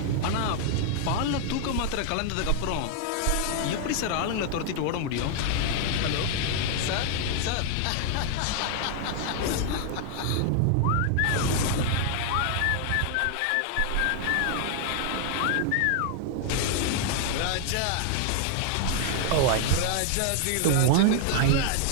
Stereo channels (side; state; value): both; different; correlation 0.00